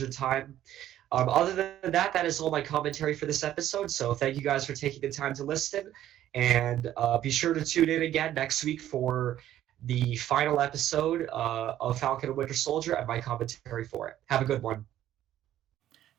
time. Other than that, that is all my commentary for this episode. So thank you guys for taking the time to listen, and be sure to tune in again next week for the final episode of Falcon and Winter Soldier and my commentary for it. Have a good one.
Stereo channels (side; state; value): left; quieter; 12.4 dB